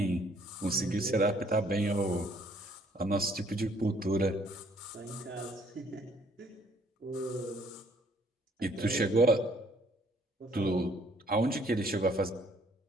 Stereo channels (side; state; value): both; normal; correlation 0.63